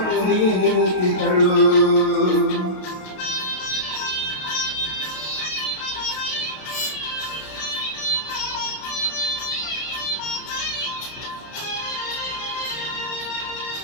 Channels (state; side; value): late; right; 32 ms